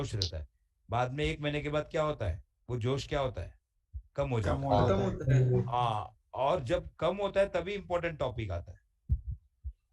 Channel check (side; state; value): both; identical; correlation 1.00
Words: रहता है, बाद में 1 महीने के बाद क्या होता है, वो जोश क्या होता है, कम हो जाता है। हाँ, और जब कम होता है तभी इंपॉर्टेंट टॉपिक आता है।